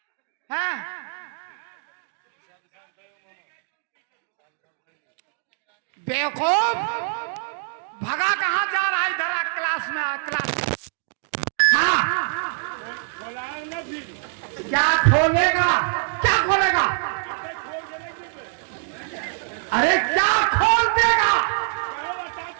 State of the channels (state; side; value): silent; left; digital silence